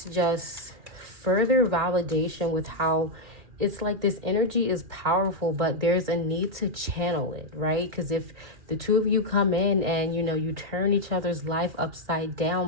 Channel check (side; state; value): left; late; 2.5 ms